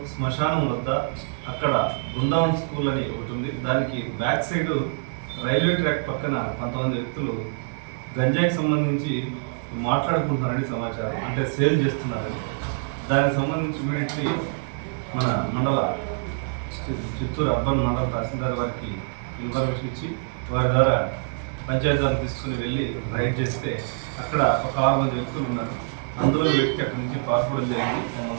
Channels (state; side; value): silent; left; digital silence